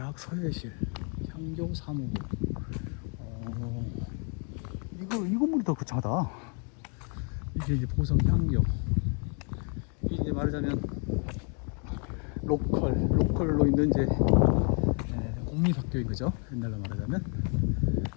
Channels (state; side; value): quieter; right; 39.2 dB